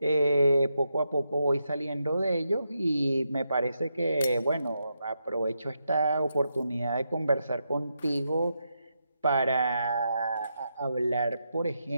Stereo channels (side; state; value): both; inverted; correlation -0.84